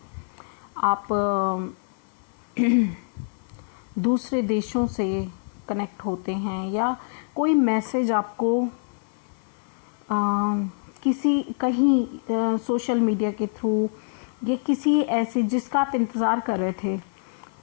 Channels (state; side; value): silent; right; digital silence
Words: आप दूसरे देशों से कनेक्ट होते हैं, या कोई मैसेज आपको कहीं सोशल मीडिया के थ्रू, या किसी ऐसे जिसका आप इंतज़ार कर रहे थे,